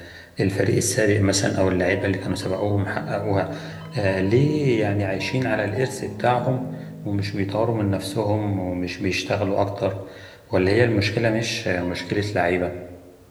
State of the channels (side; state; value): both; identical; correlation 1.00